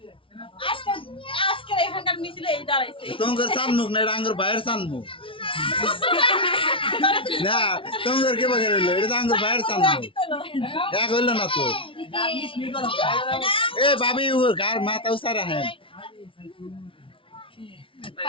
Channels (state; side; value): late; right; 0.25 ms